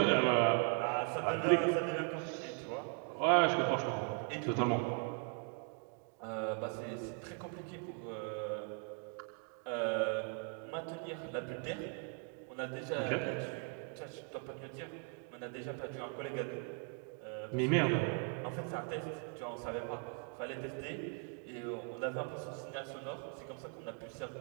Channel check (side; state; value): left; quieter; 39.1 dB